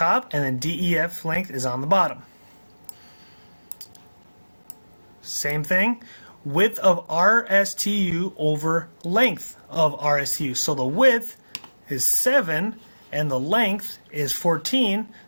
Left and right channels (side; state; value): both; inverted; correlation -1.00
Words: and then DEF length is on the bottom. Same thing, width of RSTU over length of RSTU. So the width is 7 and the length is 14,